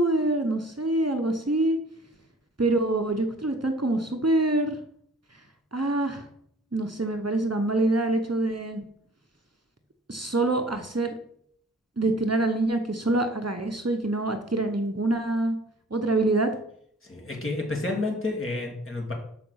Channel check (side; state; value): both; normal; correlation 0.51